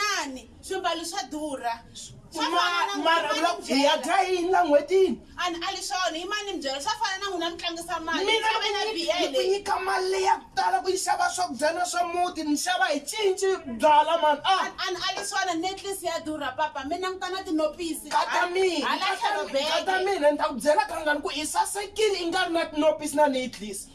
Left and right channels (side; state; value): both; identical; correlation 1.00